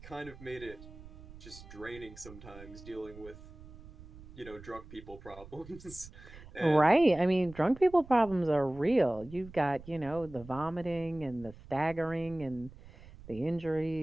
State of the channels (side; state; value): right; noise; rumble, 18 dB below the sound